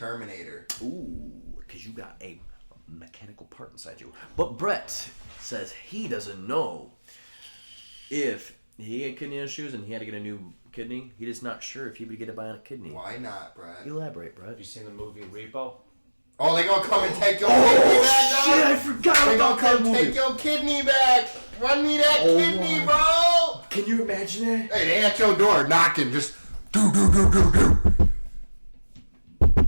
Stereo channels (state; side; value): inverted; both; correlation -1.00